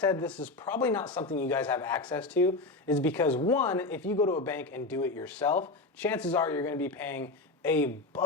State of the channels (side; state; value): right; quieter; 3.2 dB